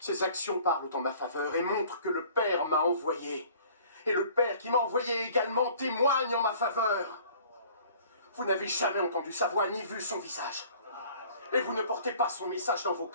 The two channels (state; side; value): inverted; both; correlation -0.52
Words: ces actions parlent en ma faveur et montrent que le Père m'a envoyé. Et le Père qui m'a envoyé également témoigne en ma faveur. Vous n'avez jamais entendu sa voix ni vu son visage. Et vous ne portez pas son message dans vos